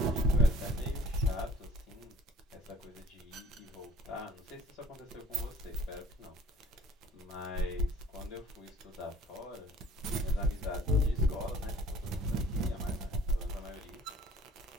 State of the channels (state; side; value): normal; both; correlation 0.54